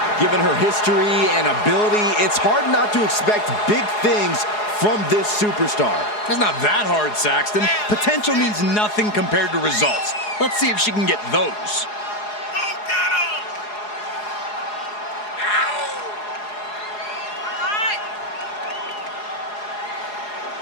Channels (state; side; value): late; right; 4.8 ms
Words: Given her history and ability, it's hard not to expect big things from this superstar. It's not that hard, Saxton. Potential means nothing compared to results. Let's see if she can get those.